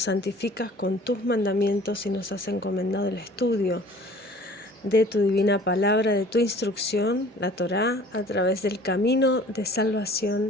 santificas con tus mandamientos y nos has encomendado el estudio de tu divina palabra, de tu instrucción, la Torá, a través del camino de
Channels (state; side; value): normal; both; correlation 0.49